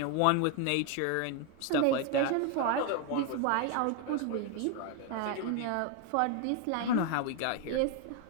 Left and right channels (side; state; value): both; different; correlation 0.01